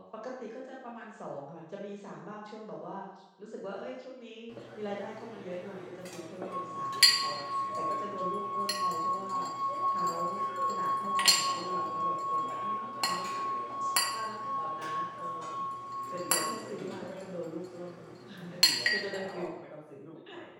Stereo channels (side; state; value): both; identical; correlation 1.00